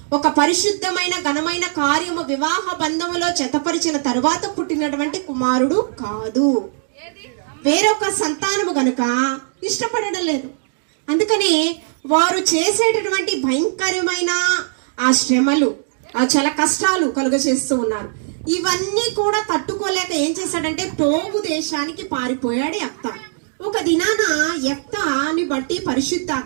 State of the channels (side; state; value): left; silent; digital silence